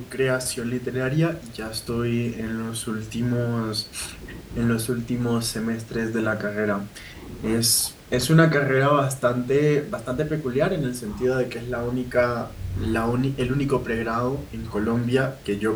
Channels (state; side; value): identical; both; correlation 1.00